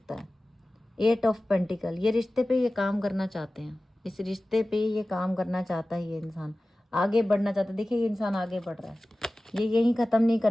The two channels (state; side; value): normal; both; correlation 0.96